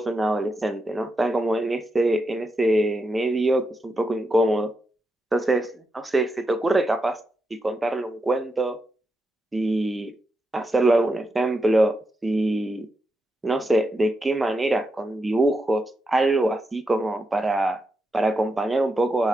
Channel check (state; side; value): normal; both; correlation 0.85